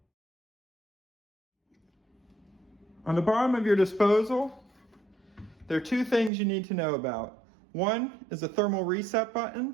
On the bottom of your disposal, there are two things you need to know about. One is a thermal reset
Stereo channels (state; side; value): drops out; left; at 6.3 s